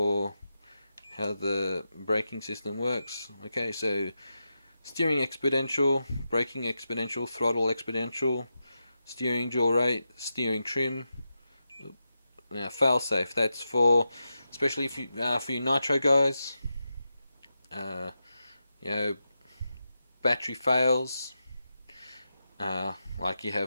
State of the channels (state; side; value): inverted; both; correlation -0.89